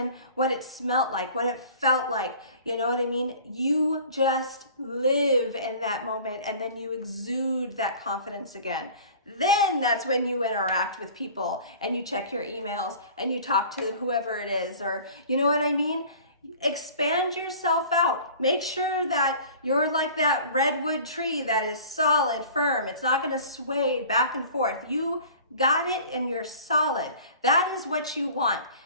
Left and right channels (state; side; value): inverted; both; correlation -0.44